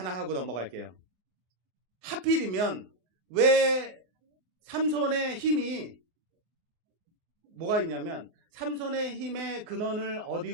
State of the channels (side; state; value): left; late; 24 ms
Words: 하고 넘어갈게요. 하필이면 왜 삼손의 힘이 뭐가 있냐면 삼손의 힘의 근원을